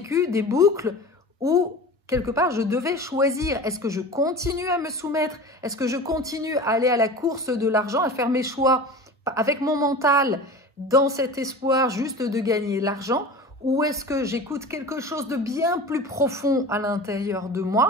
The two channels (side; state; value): both; normal; correlation 0.35